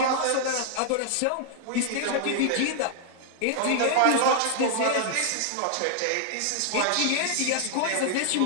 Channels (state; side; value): different; both; correlation -0.01